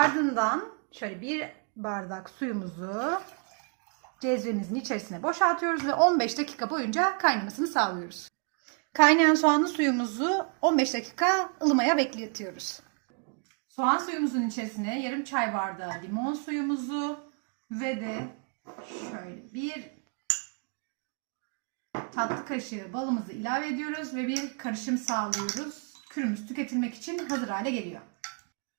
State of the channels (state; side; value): quieter; left; 39.9 dB